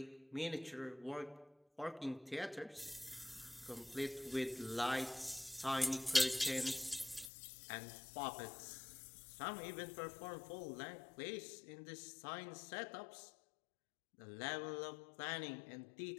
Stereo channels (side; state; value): right; drops out; at 7.3 s